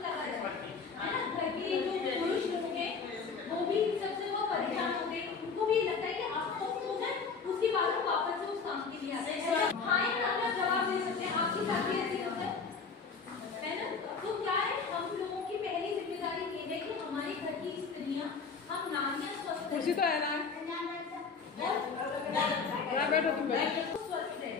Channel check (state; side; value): quieter; right; 5.2 dB